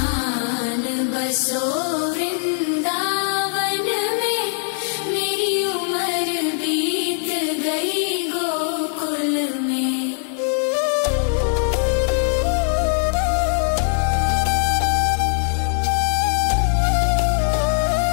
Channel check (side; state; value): right; silent; digital silence